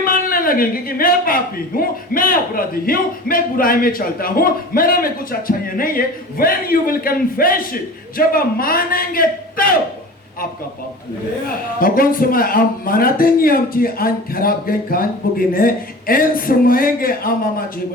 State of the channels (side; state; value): both; normal; correlation 0.37